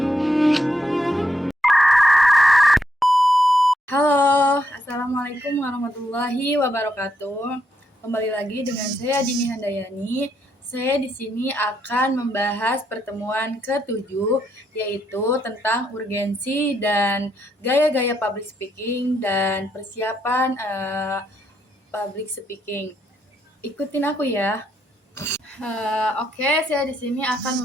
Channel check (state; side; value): normal; both; correlation 0.78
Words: Halo, Assalamualaikum warahmatullahi wabarakatuh. Kembali lagi dengan saya Dini Handayani. Saya di sini akan membahas pertemuan ke-7, yaitu tentang urgensi dan gaya-gaya public speaking dan persiapan public speaking. Ikutin aku ya. Oke, saya di sini